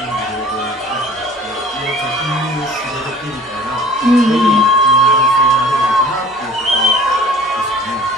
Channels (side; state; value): both; normal; correlation 0.47